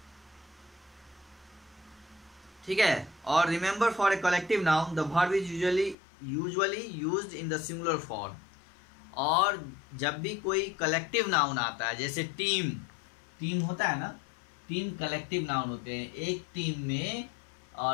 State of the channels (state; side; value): drops out; right; at 6.0 s